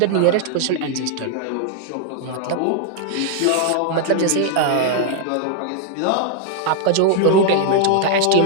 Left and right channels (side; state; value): both; different; correlation 0.00